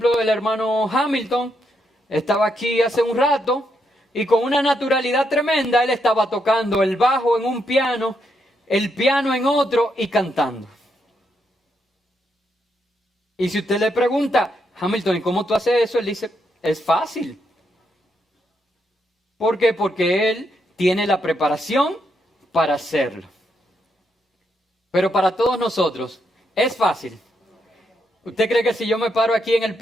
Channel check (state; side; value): normal; both; correlation 0.79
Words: el hermano Hamilton estaba aquí hace un rato y con una naturalidad tremenda él estaba tocando el bajo en un piano, el piano en otro y cantando. Y si usted le pregunta: Hamilton, ¿y cómo tú haces eso? Él dice: es fácil. ¿Por qué? Porque él tiene la preparación para hacerlo. Pero para todos nosotros, ¿es fácil? ¿Usted cree que si yo me paro aquí en el